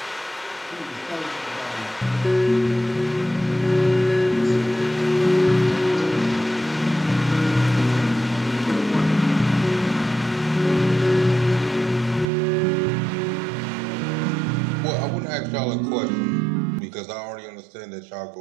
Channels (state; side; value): drops out; left; at 12.2 s